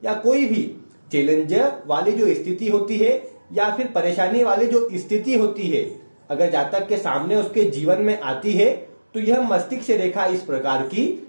या कोई भी चैलेंज वाली जो स्थिति होती है या फिर परेशानी वाली जो स्थिति होती है, अगर जातक के सामने उसके जीवन में आती है तो यह मस्तिष्क रेखा इस प्रकार की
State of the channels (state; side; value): inverted; both; correlation -1.00